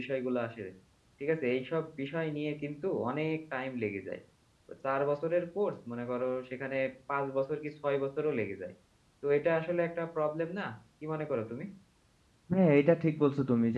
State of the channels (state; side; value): identical; both; correlation 1.00